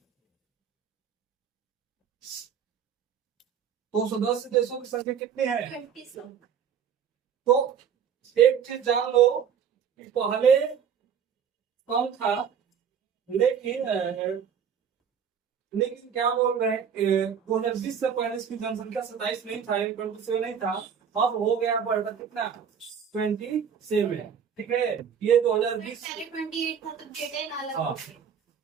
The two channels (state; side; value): quieter; left; 7.6 dB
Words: तो सदस्य देशों की संख्या कितनी है? 20 लोग। तो एक चीज जान लो कि पहले कम था, लेकिन क्या बोल रहे हैं, 2020 से पहले इसकी जनसंख्या 27 नहीं था, 27 नहीं था। अब हो गया बढ़कर कितना? 27। ठीक है, ये 2020 पहले 28 था तो डेटा अलग हाँ। हो गया।